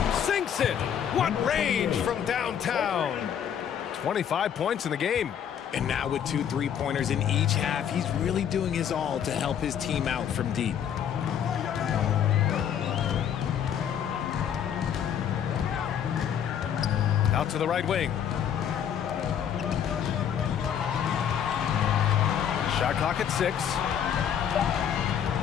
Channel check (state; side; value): quieter; right; 8.9 dB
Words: Sinks it. What range from downtown. 25 points in the game. And now with 2 3-pointers in each half, he's really doing his all to help his team out from deep. Out to the right wing. Shot clock at 6.